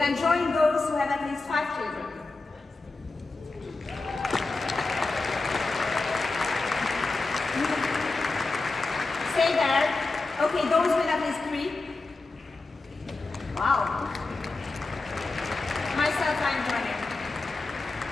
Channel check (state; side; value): quieter; right; 3.5 dB